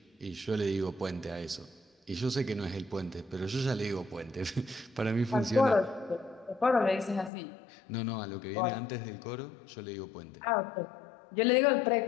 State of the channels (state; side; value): drops out; right; at 7.3 s